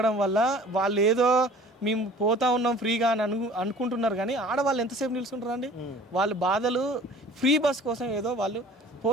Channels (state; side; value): normal; both; correlation 0.48